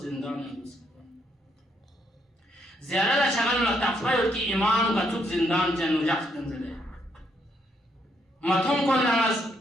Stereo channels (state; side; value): normal; both; correlation 0.74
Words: زندان لسکان زیادہ شغل تقفیل کی امام کا چوب زندان جنو جخت نزده متون کن نماز